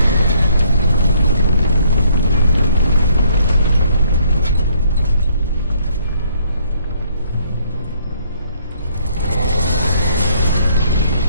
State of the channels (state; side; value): inverted; both; correlation -0.66